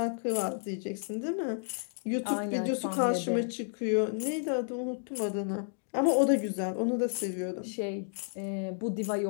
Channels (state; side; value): silent; right; digital silence